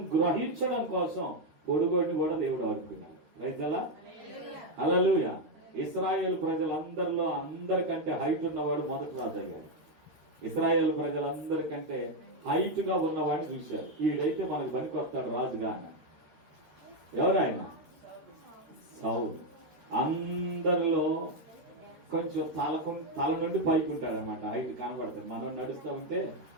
గ్రహించడం కోసం పొడుగోడిని కూడా దేవుడు ఆడుకున్నాడు. రైతలా హల్లెలూయా. ఇశ్రాయేల్ ప్రజలందరిలో అందరికంటే హైట్ ఉన్నవాడు మొదటి రాజు అయ్యాడు. ఇశ్రాయేల్ ప్రజలందరికంటే హైట్ గా ఉన్నవాడిని చూశారు. వీడైతే మనకు పనికొస్తాడు రాజుగా అన్న. ఎవరు ఆయన? సౌలు. అందరిలో కొంచెం తల నుండి పైకి ఉంటాడు అనమాట, హైట్ కనబడతాడు. మనం నడుస్తూ ఉంటే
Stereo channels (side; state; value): left; late; 13 ms